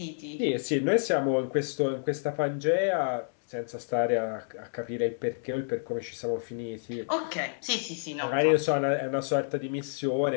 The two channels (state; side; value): silent; right; digital silence